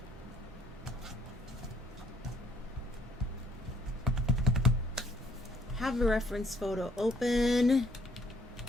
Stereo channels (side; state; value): both; normal; correlation 0.66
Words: Have a reference photo open.